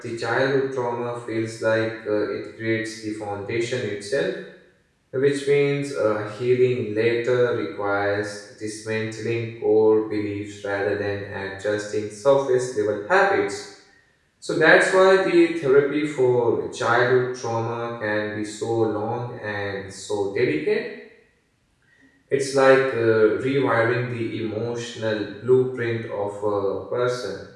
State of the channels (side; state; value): both; identical; correlation 1.00